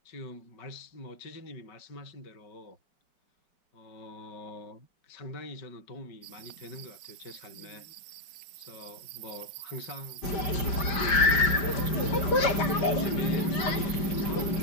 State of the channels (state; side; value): late; right; 5.0 ms